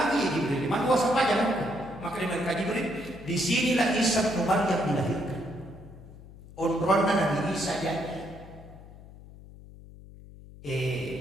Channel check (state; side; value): noise; left; hum, 18 dB below the sound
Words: Jibril. Maka masuk pajak maka di mereka Jibril. Di sinilah Isa bin Maryam dilahirkan. Umrohnya Nabi Isa jadi.